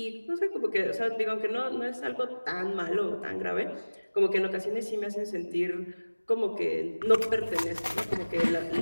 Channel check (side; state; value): both; inverted; correlation -1.00